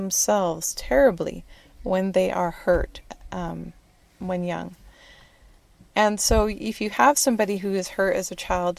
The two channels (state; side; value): identical; both; correlation 1.00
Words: terribly when they are hurt when young. And so if you have somebody who is hurt as a